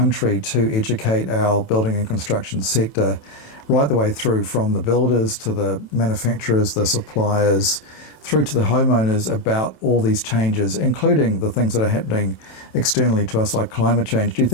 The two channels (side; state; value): right; late; 27 ms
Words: to educate our building and construction sector right the way through, from the builders to the manufacturers, the suppliers, through to the homeowners, about all these changes, including the things that are happening externally to us like climate change? Do you